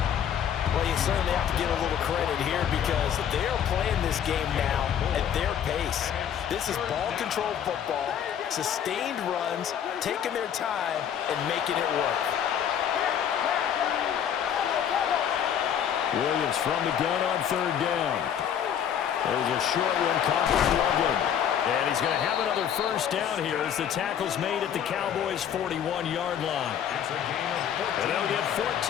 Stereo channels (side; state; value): right; quieter; 9.0 dB